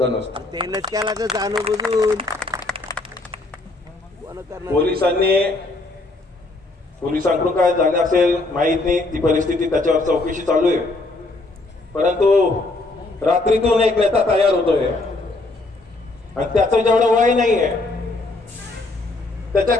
नसतं। तेनच केला तर जाणून बुजून पोलिसांकडून काय झाले असेल माहित नाही, ती परिस्थिती त्याच्यावर चौकशी चालू आहे। परंतु रात्रीतून एक नेता तयार होतोय आणि त्याचं जेवढं वय नाहीये,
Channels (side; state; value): right; quieter; 3.0 dB